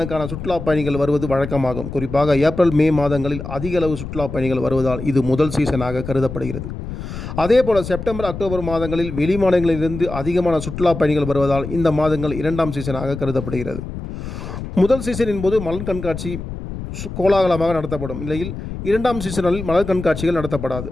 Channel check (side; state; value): left; noise; rumble, 8 dB below the sound